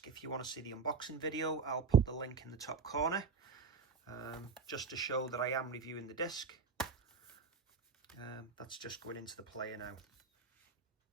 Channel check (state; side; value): quieter; left; 5.1 dB